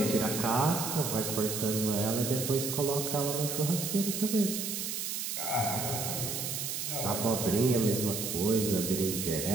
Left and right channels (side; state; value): right; noise; hiss, 3 dB below the sound